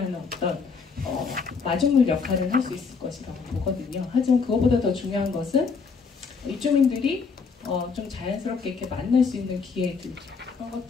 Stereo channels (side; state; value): right; quieter; 5.2 dB